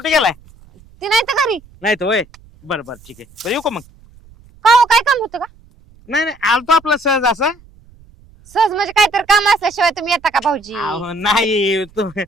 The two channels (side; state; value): right; noise; rumble, 26 dB below the sound